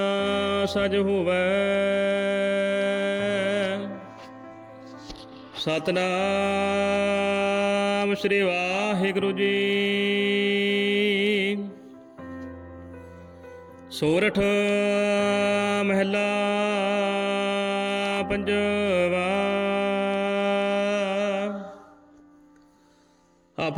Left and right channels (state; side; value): identical; both; correlation 1.00